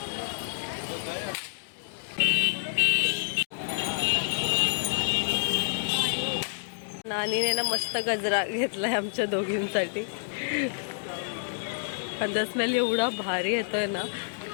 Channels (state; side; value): silent; right; digital silence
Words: नानीने ना मस्त गजरा घेतलाय आमच्या दोघींसाठी. आणि स्मेल एवढा भारी येतोय ना.